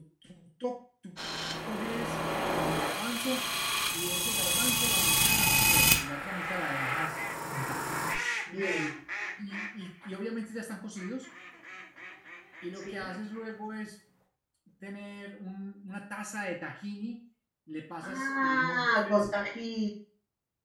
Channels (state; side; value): identical; both; correlation 1.00